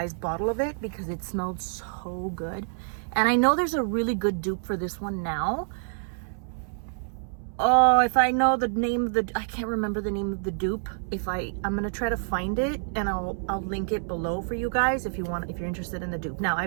bottle of it because it smelled so good. And I know there's a really good dupe for this one now. Oh, if I know the name of the, I can't remember the name of the dupe. I'm gonna try to find it, and I'll link it below for you guys if you're interested in the dupe. Now,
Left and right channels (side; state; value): left; silent; 60 dB below the other